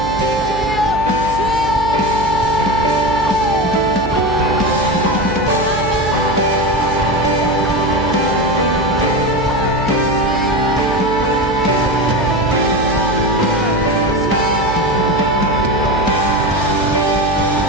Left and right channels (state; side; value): noise; right; hum, 10 dB below the sound